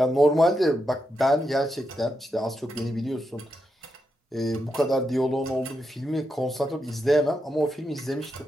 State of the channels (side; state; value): both; normal; correlation 0.85